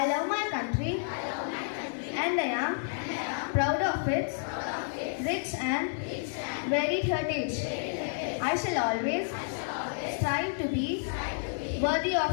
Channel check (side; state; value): right; silent; digital silence